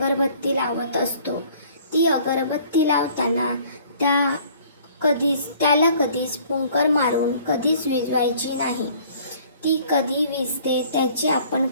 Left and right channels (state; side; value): inverted; both; correlation -0.55